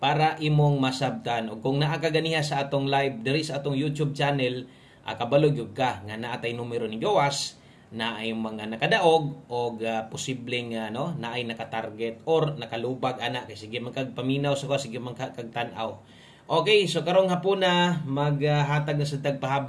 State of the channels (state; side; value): identical; both; correlation 1.00